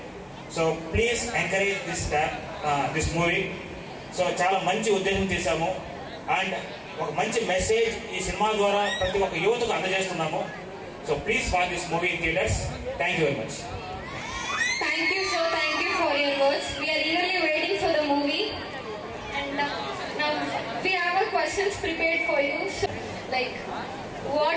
So please encourage this movie. So చాలా మంచి ఉద్దేశం చేశాము అండ్ ఒక మంచి మెసేజ్ ఈ సినిమా ద్వారా ప్రతి ఒక్క యువతకు అందజేస్తున్నాము. So please watch this movie in theatres. Thank you very much. Thank you, sir. Thank you for your words. We are eagerly waiting for the movie. And now we have our questions prepared for you. So, like,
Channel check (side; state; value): both; identical; correlation 1.00